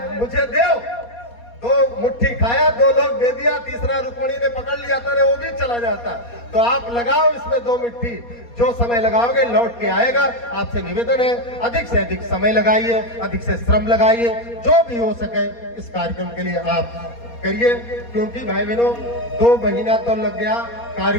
मुझे दो, 2 मुट्ठी खाया, 2 लोग दे दिया, तीसरा रुक्मिणी ने पकड़ लिया था, वो भी चला जाता। तो आप लगाओ इसमें 2 मुट्ठी, जो समय लगाओगे लौट के आएगा। आपसे निवेदन है अधिक से अधिक समय लगाइए, अधिक से श्रम लगाइए, जो भी हो सके इस कार्यक्रम के लिए आप करिए, क्योंकि भाई बहनों 2 महीना तो लग गया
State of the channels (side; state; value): right; late; 4.2 ms